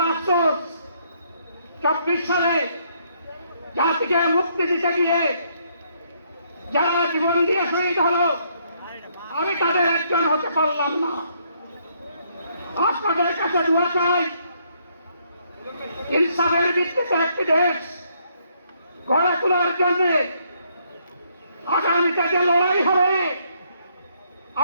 আফসোস, 24 সালে জাতিকে মুক্তি দিতে গিয়ে যারা জীবন দিয়ে শহীদ হলো, আমি তাদের একজন হতে পারলাম না। আপনাদের কাছে দোয়া চাই, ইনসাফের ভিত্তিতে একটি দেশ গড়ে তোলার জন্য আগামীতে যে লড়াই হবে,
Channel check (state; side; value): inverted; both; correlation -0.70